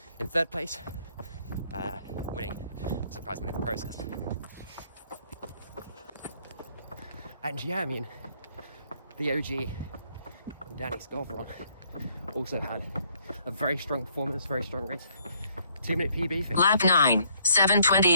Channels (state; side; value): inverted; both; correlation -0.66